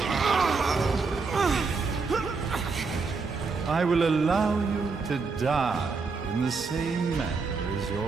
I will allow you to die in the same manner as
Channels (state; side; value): quieter; left; 4.5 dB